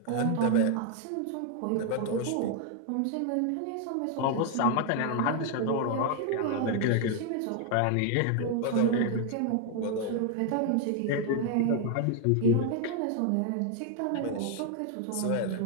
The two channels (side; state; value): both; different; correlation 0.00